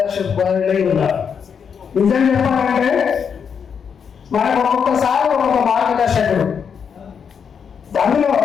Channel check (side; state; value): right; quieter; 6.9 dB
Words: ఉన్నారు. నిజం చెప్పాలంటే మనకు ఒక్కొక్కసారి ఒక్కొక్క మార్గదర్శకుడు. అందులో